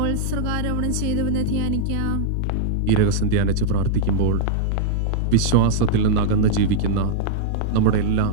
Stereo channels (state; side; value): different; both; correlation -0.02